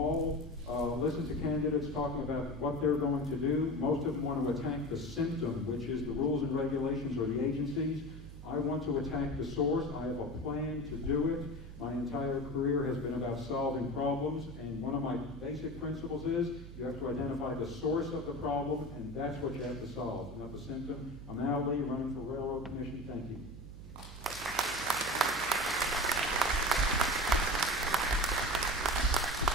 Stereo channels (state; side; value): noise; right; hum, 13 dB below the sound